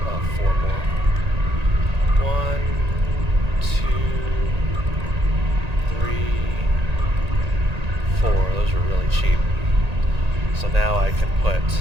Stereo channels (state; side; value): late; left; 1.9 ms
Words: 4 more. 1, 2, 3, 4. Those are really cheap. So now I can